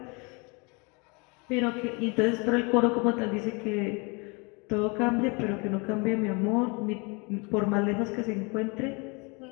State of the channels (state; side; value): quieter; right; 30.2 dB